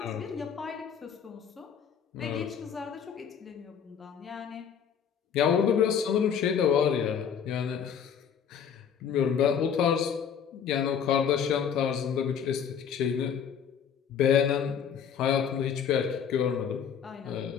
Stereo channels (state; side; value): quieter; right; 7.8 dB